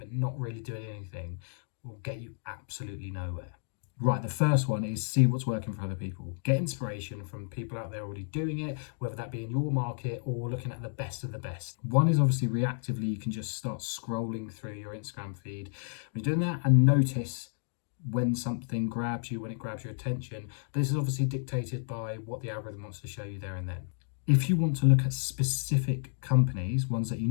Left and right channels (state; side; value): silent; right; digital silence